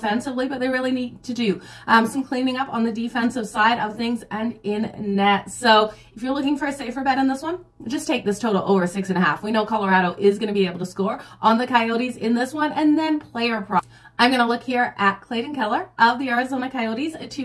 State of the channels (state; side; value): identical; both; correlation 1.00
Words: but they really need to do some cleaning up on the defensive side of things and in net. So if you're looking for a safer bet in this one, just take this total over 6.5. We know Colorado is going to be able to score on the Coyotes in this one, and then player props. I'm going to look here at Clayton Keller of the Arizona Coyotes to